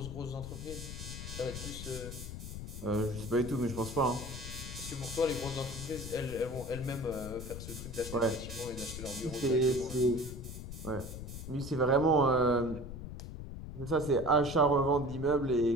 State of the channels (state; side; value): noise; left; rumble, 9 dB below the sound